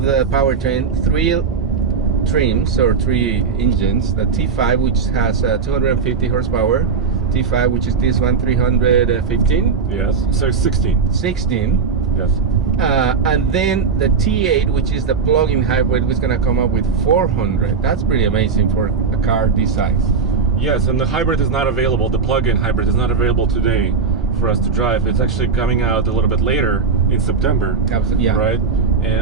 the powertrain, 3 trims or 3 engines: the T5, which has 250 horsepower, T5, which is this one, 315, Yes. So 16. 16. Yes. And then the T8, which is the plug-in hybrid, was gonna come up with 400. That's pretty amazing for a car this size. Yes, and the hybrid is not available. The plug-in hybrid is not available today for us to drive. It's actually coming out a little bit later in September. Absolutely, yeah. Right.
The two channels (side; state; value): left; quieter; 5.3 dB